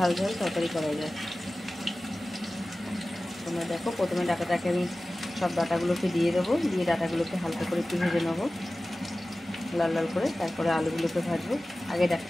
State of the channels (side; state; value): both; normal; correlation 0.97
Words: ঝাল তরকারি করা যায়। তোমরা দেখো, প্রথমে ডাঁটাটাকে আমি সব ডাঁটাগুলোকে দিয়ে দেবো, দিয়ে ডাঁটাগুলোকে হালকা করে একটু ভেজে নেবো লাল লাল করে, তারপরে আলুগুলোকে ভাজবো। আগে